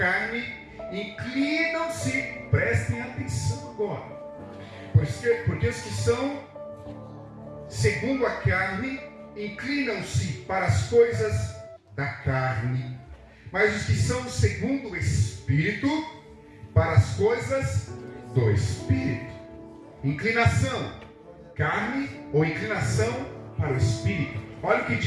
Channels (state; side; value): identical; both; correlation 1.00